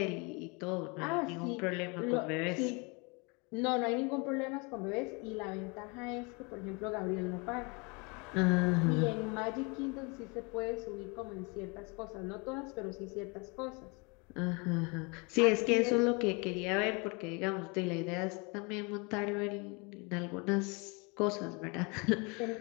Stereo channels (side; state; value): right; quieter; 30.1 dB